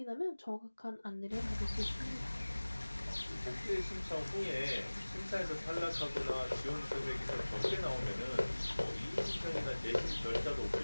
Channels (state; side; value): inverted; both; correlation -1.00